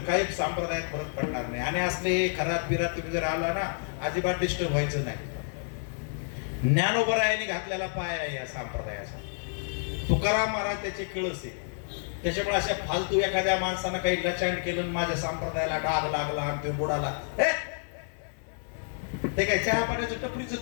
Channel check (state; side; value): silent; right; 58 dB below the other